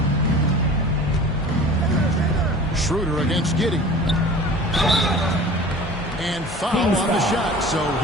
Schroeder against Giddey. And foul on the shot, so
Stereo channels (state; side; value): normal; both; correlation 0.41